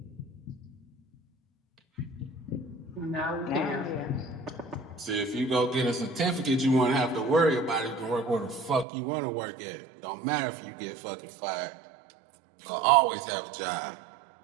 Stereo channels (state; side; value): drops out; left; at 8.8 s